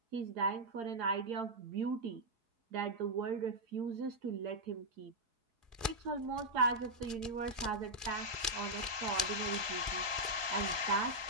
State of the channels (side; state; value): left; late; 4.7 ms